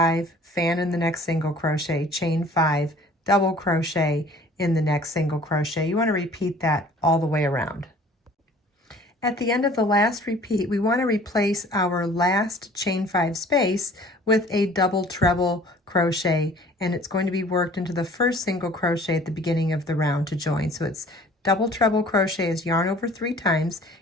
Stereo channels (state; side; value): normal; both; correlation 0.51